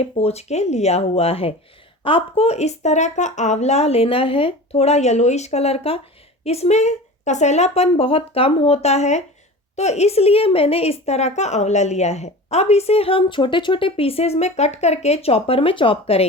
पोंछ के लिया हुआ है। आपको इस तरह का आंवला लेना है, थोड़ा येलोइश कलर का। इसमें कसैलापन बहुत कम होता है, तो इसलिए मैंने इस तरह का आंवला लिया है। अब इसे हम छोटे छोटे पीसेस में कट करके चॉपर में चॉप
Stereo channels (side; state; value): both; normal; correlation 0.35